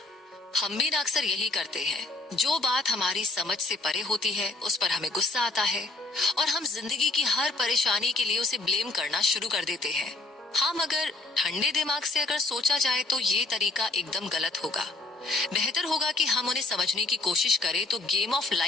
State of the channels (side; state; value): right; quieter; 3.0 dB